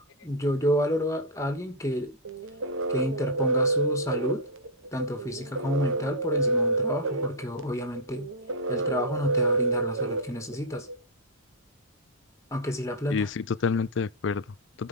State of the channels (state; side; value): normal; both; correlation -0.03